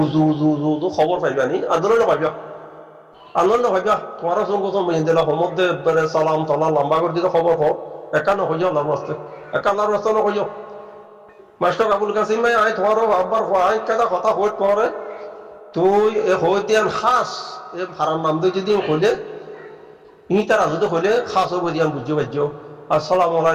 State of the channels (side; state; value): both; identical; correlation 1.00